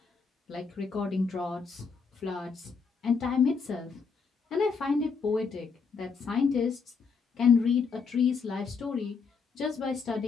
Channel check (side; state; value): right; quieter; 5.4 dB